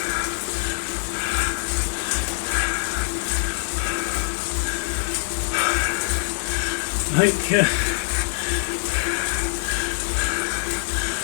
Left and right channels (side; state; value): right; silent; digital silence